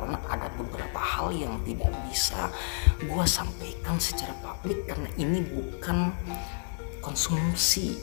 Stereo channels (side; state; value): right; silent; digital silence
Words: ada beberapa hal yang tidak bisa gue sampaikan secara publik karena ini bukan konsumsi